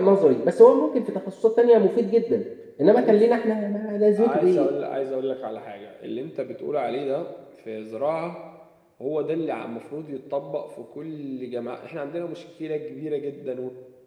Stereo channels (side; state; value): both; identical; correlation 1.00